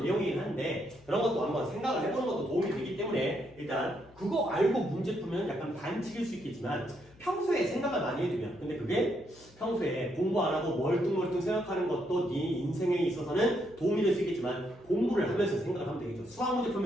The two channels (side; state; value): left; noise; hum, 26 dB below the sound